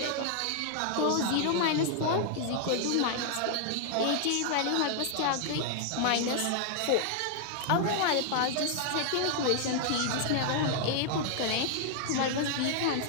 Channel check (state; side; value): different; both; correlation -0.01